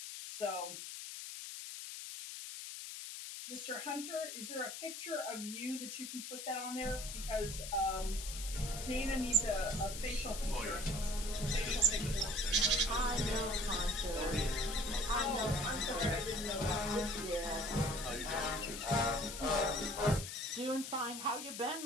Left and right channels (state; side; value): noise; left; hiss, 8 dB below the sound